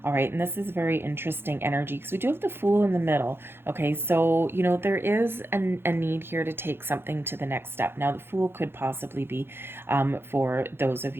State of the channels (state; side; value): late; left; 0.11 ms